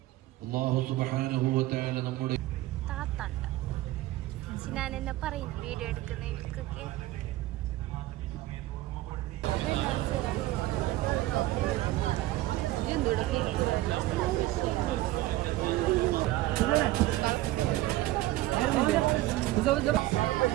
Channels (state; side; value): quieter; left; 16.9 dB